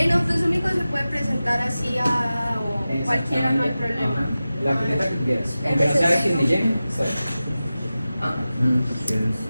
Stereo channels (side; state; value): both; inverted; correlation -0.95